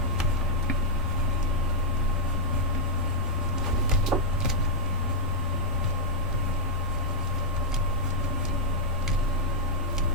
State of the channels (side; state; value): both; normal; correlation -0.06